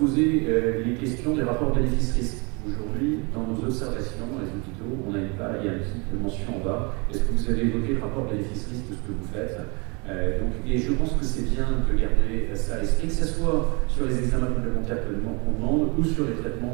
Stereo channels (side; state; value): left; quieter; 30.5 dB